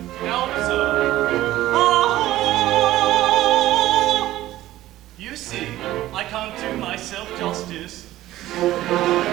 Now observe. You see, I can't do myself justice.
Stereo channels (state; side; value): quieter; left; 15.1 dB